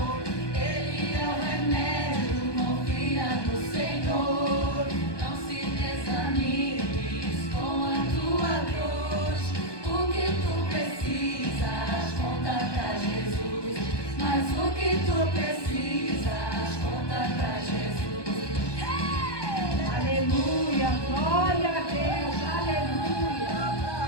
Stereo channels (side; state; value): right; late; 1.2 ms